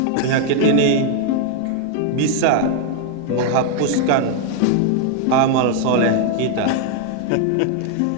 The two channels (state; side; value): different; both; correlation 0.00